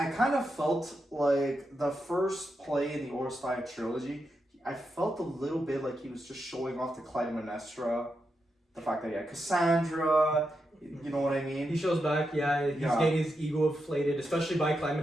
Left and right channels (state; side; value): normal; both; correlation 0.86